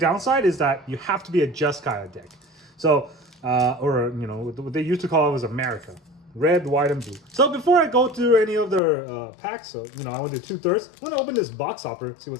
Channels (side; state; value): right; drops out; at 8.8 s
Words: is that you have to be a Jeskai deck. So, or you know, what they used to call it was America. Red, white, and blue. So before I go through any of their packs, so you know, I went to 2/3. I'm gonna open this box hopper, see